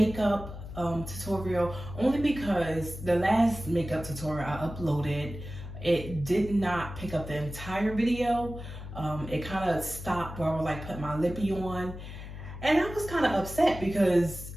tutorial, only because the last makeup tutorial I uploaded, it did not pick up the entire video. It kind of stopped where I was like putting my lippy on, and I was kind of upset because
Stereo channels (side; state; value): left; noise; hum, 11 dB below the sound